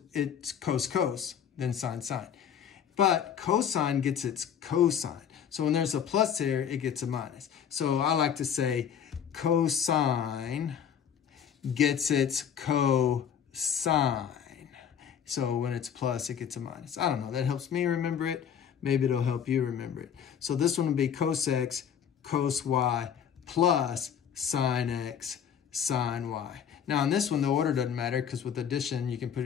cos, then sine, sine. But cosine gets its cosine. So when there's a plus here, it gets a minus. So I like to say cosine gets its cosine. So when it's plus, it gets a minus. I don't know. That helps me remember it. Maybe it'll help you remember it. So this one will be cos x, cos y, plus sine x, sine y. Now on this one, the order doesn't matter because with addition, you can put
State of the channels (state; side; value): quieter; right; 8.3 dB